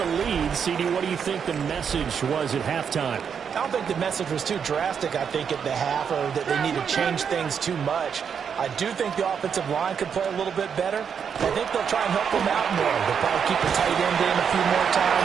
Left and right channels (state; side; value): quieter; left; 7.1 dB